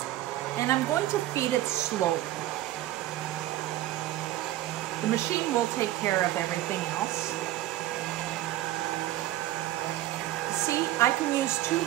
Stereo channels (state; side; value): quieter; left; 14.8 dB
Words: and I'm going to feed it slowly. The machine will take care of everything else. See, I can use two